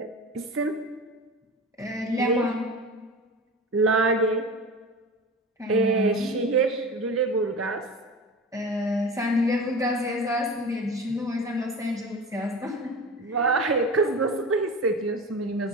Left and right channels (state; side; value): normal; both; correlation 0.31